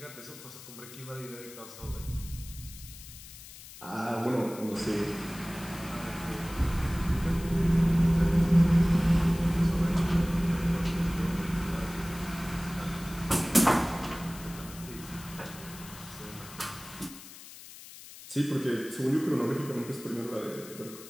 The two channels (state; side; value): noise; left; hiss, 16 dB below the sound